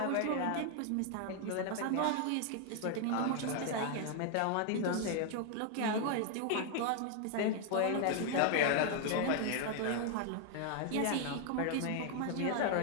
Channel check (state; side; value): different; both; correlation 0.00